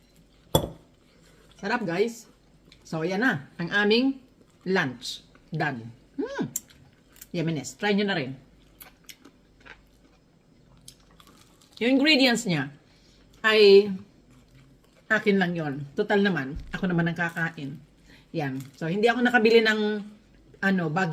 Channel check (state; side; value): identical; both; correlation 1.00